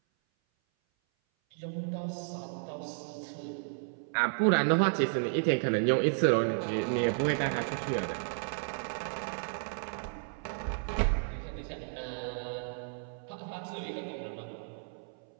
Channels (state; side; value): silent; left; 56 dB below the other